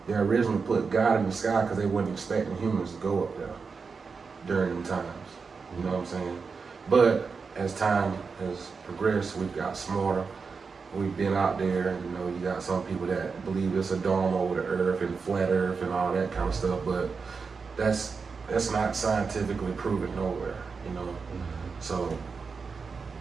originally put God in the sky because they weren't expecting humans to go up there during them times. You know what I'm saying? But as time has progressed, we've got smarter. We've been out there, and you got some people that believe it's a dome over the earth and flat earth and all that kind of stuff, but that's not scientifically proven nowhere, So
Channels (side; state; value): left; quieter; 5.0 dB